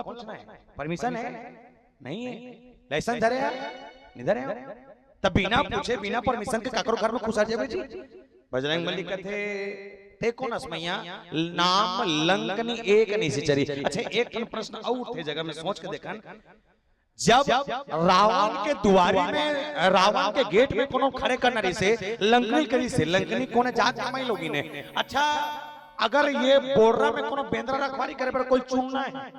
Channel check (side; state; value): both; identical; correlation 1.00